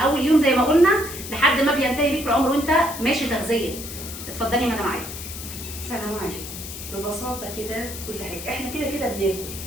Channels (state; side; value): noise; left; hiss, 10 dB below the sound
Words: يوم زي ما قلنا لحد ما بينتهي بيك العمر وانت ماشي تغذيه. اتفضلي مدام عايده. سلام عليكم. ببساطه كده كل حاجه احنا كده كده بناكل،